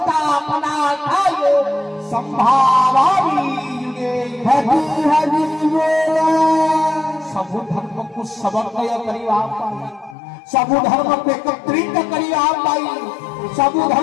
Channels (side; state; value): right; drops out; at 10.2 s